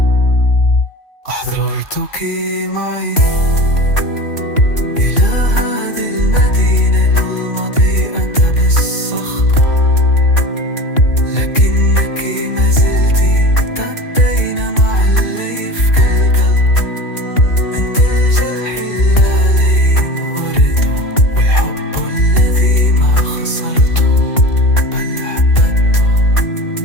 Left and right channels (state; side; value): late; right; 2.8 ms